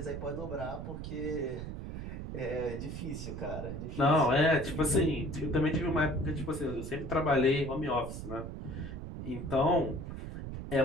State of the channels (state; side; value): noise; right; rumble, 7 dB below the sound